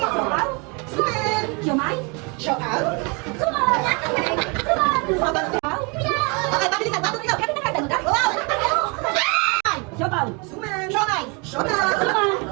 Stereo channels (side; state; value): left; quieter; 31.4 dB